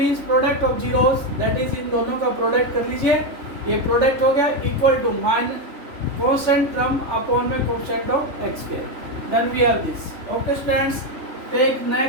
product of zeros, that is इन दोनों का प्रोडक्ट कर लीजिए, ये प्रोडक्ट हो गया, equal to minus constant term upon में coefficient of x square, then we have this. Okay students, take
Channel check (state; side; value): late; left; 3.5 ms